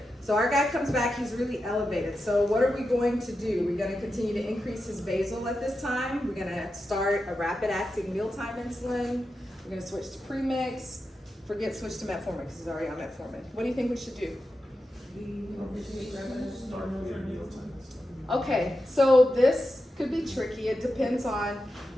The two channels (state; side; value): normal; both; correlation 0.89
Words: so our guy comes back, he's really elevated. So what are we going to do? We're gonna continue to increase his basal at this time. We're gonna start a rapid acting mealtime insulin. We're gonna switch to premix. Forget switch to metformin because he's already on metformin. What do you think we should do? Okay, so this could be tricky. It depends on